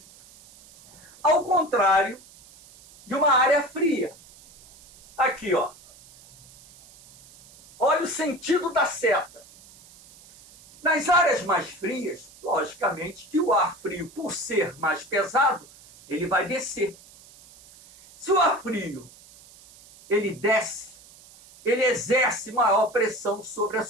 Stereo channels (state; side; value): noise; right; hiss, 23 dB below the sound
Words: Ao contrário de uma área fria. Aqui, ó. Olha o sentido da seta. Nas áreas mais frias, logicamente que o ar frio, por ser mais pesado, ele vai descer. Se o ar frio ele desce, ele exerce maior pressão sobre a